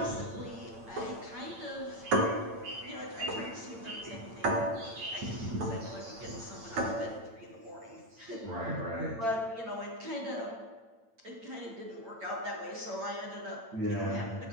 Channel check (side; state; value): left; late; 8.8 ms